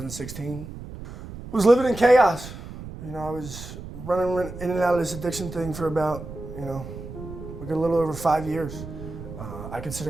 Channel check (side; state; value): right; noise; rumble, 11 dB below the sound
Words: I was living in chaos. I was running in and out of this addiction thing for about, like a little over 5 years. I